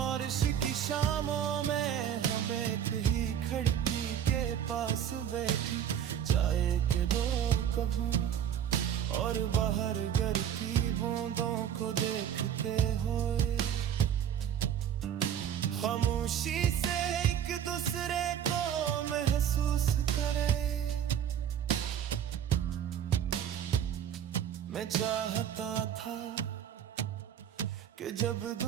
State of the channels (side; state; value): left; quieter; 9.4 dB